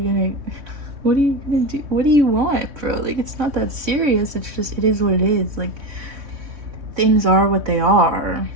what are you gonna do? What do you want, bro? Like, it's not that serious. It's just, it is what it is. Like, things are what they are.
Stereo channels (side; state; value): left; late; 3.2 ms